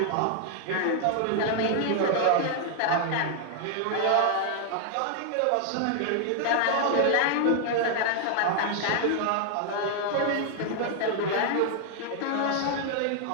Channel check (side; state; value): both; different; correlation 0.00